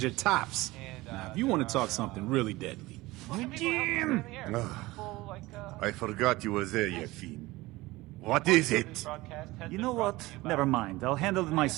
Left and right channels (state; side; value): quieter; left; 20.0 dB